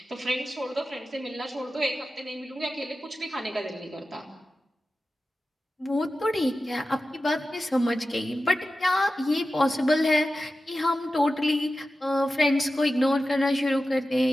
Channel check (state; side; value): normal; both; correlation 0.93